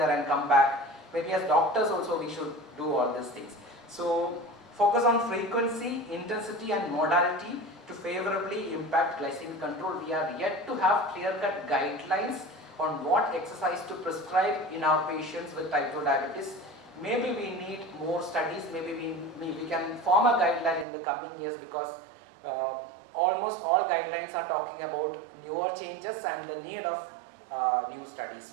and come back. Maybe as doctors also we should do all these things. So focus on frequency, intensity and modality to favorably impact glycemic control. We are yet to have clear-cut guidelines on what exercise to prescribe in our patients with type 2 diabetes. Maybe we need more studies, maybe we can form a guideline in the coming years, because almost all guidelines are talking about newer changes and the need of new studies.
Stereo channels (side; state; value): left; drops out; at 20.9 s